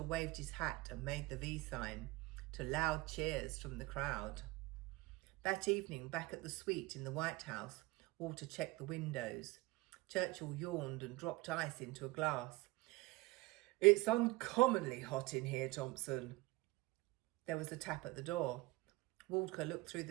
waved his hat and made the V sign, to loud cheers from the crowd. That evening, back at the suite in the White House, Walter checked the windows. Churchill yawned and dropped ice into a glass. It's uncommonly hot in here, Thompson. There was a tap at the door. Walter looked through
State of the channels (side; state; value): left; quieter; 21.4 dB